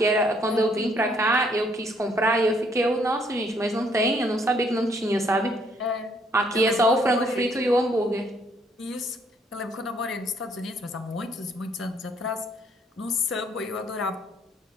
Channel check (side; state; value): both; normal; correlation 0.67